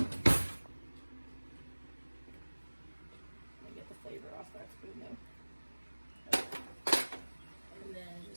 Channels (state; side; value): inverted; both; correlation -1.00